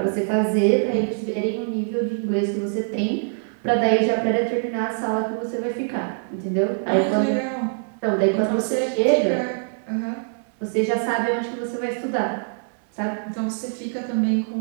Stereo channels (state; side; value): silent; left; digital silence